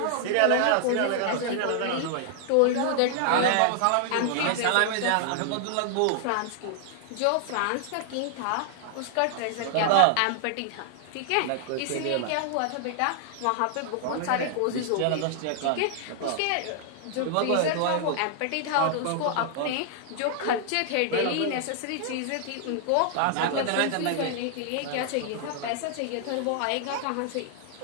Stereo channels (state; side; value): different; both; correlation -0.01